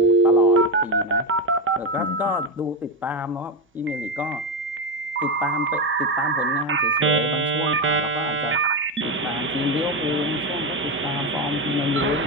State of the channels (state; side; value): normal; both; correlation 0.09